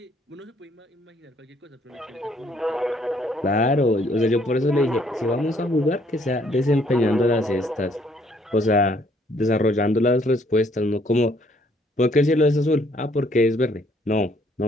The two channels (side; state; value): both; normal; correlation 0.65